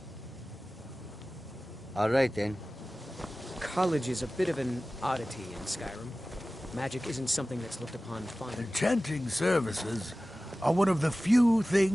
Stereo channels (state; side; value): normal; both; correlation 0.96